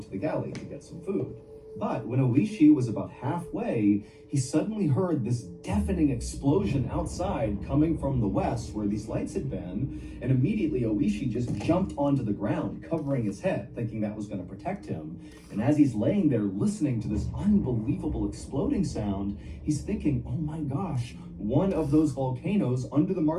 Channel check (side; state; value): both; identical; correlation 1.00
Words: the galley to get some food. But when Oishi was about halfway, he suddenly heard this deafening explosion outside coming from the west where these lights had been, and immediately Oishi just jumped onto the ground, covering his head, thinking that was going to protect him. And as he's laying there listening to this unbelievable exploding sound, he's thinking, oh my gosh, one of those volcanoes under the